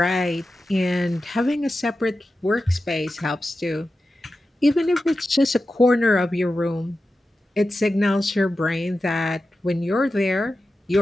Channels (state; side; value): normal; both; correlation 0.92